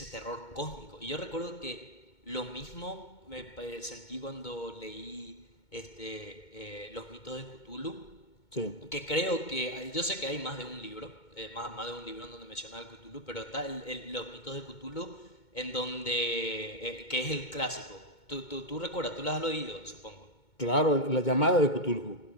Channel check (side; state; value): right; late; 2.2 ms